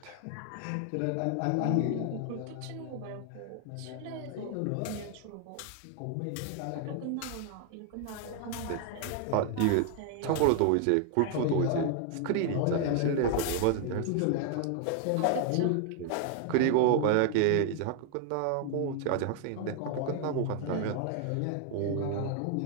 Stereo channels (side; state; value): both; different; correlation 0.00